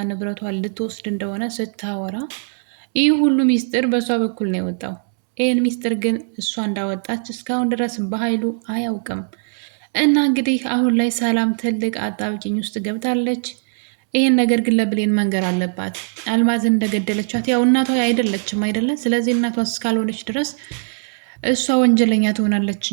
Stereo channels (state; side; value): silent; left; 66 dB below the other